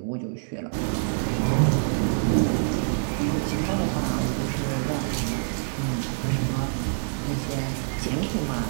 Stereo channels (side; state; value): left; silent; digital silence